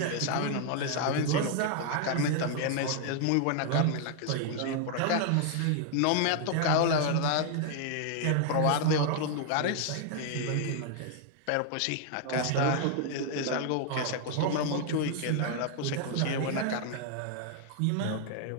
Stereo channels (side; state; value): both; different; correlation 0.00